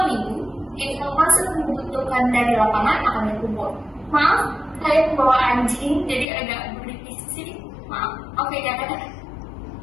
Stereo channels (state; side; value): drops out; right; at 6.2 s